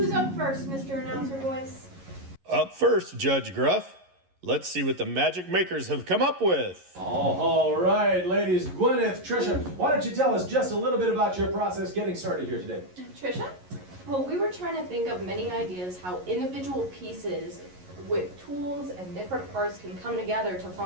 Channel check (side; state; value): left; late; 11 ms